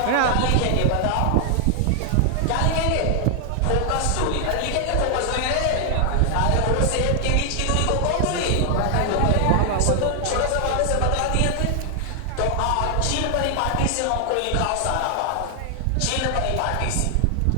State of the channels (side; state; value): both; different; correlation 0.00